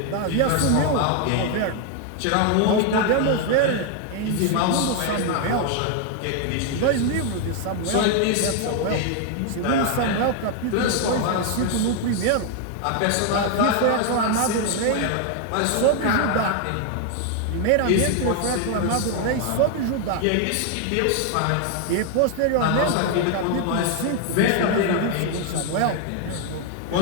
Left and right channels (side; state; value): both; different; correlation 0.01